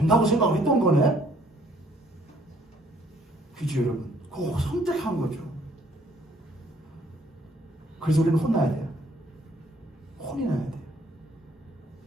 생각을 했던 거네. 그죠 여러분? 그거 선택한 거죠. 그래서 우리는 혼나야 돼요. 혼이 나야 돼요.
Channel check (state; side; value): normal; both; correlation 0.63